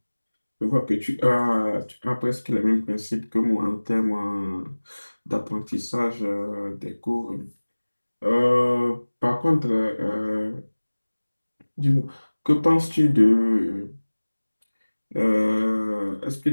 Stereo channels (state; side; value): inverted; both; correlation -1.00